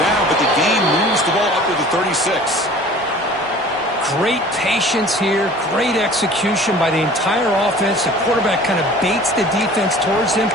but the game moves the ball up to the 36. Great patience here. Great execution by the entire offense. The quarterback kind of baits the defense towards him,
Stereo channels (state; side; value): normal; both; correlation 0.46